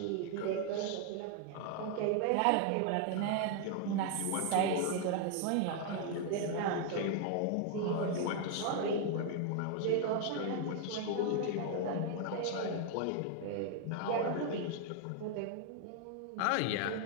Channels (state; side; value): different; both; correlation 0.00